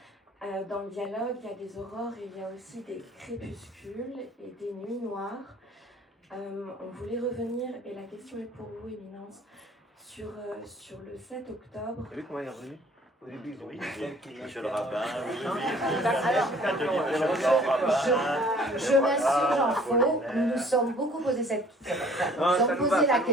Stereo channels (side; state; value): both; normal; correlation 0.54